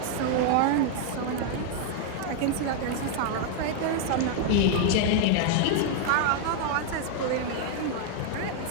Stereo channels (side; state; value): both; different; correlation 0.00